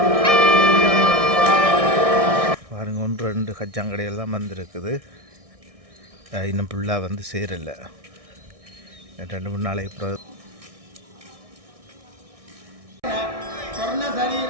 பாருங்க, 1-2 கச்சாங்கடைகள் தான் வந்திருக்குது. இன்னும் ஃபுல்லாக வந்து சேரலை. 2-3 நாளைக்கு அப்புறம்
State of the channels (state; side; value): late; left; 1.6 ms